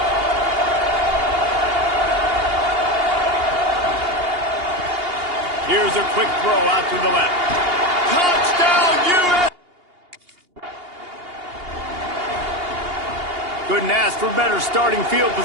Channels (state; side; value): late; left; 2.8 ms